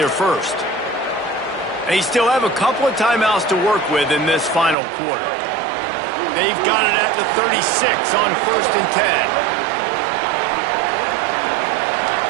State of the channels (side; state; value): left; drops out; at 4.8 s